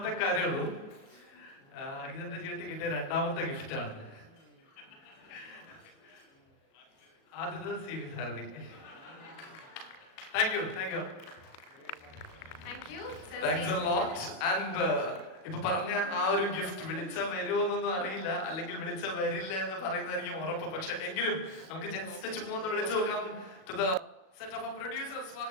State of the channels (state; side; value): late; right; 37 ms